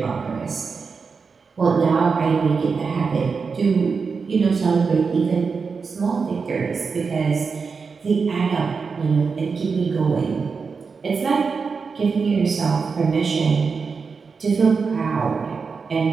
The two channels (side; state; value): left; quieter; 5.1 dB